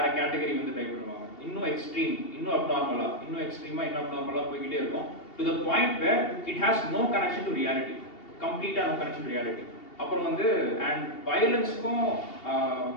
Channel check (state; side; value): late; right; 2.8 ms